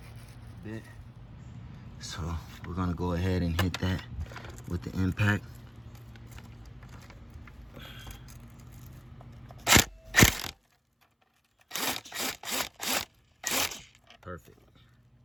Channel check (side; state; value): both; identical; correlation 1.00